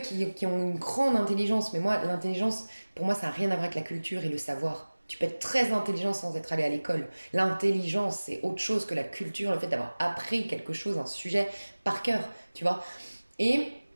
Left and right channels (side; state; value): both; inverted; correlation -1.00